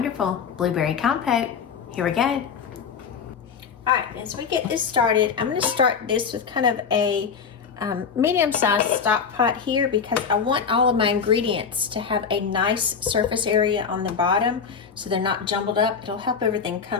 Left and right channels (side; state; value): right; quieter; 6.2 dB